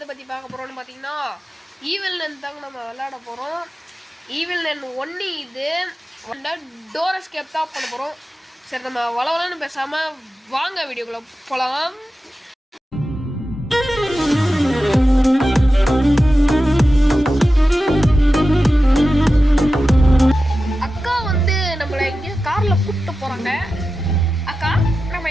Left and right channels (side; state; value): both; normal; correlation 0.93